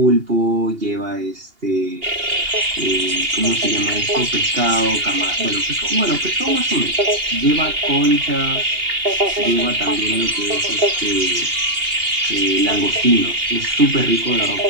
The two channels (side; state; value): left; late; 2.8 ms